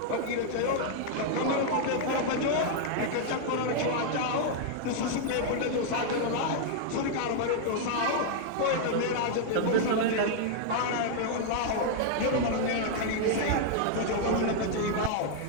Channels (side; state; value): both; different; correlation -0.01